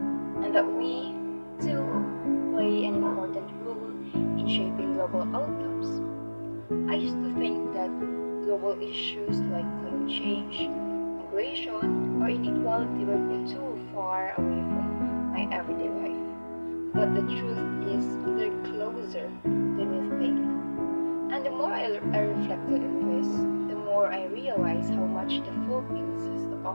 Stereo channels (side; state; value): both; inverted; correlation -1.00